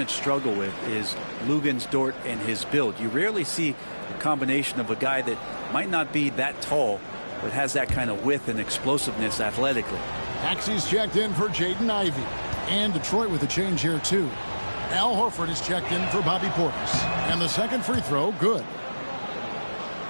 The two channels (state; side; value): inverted; both; correlation -1.00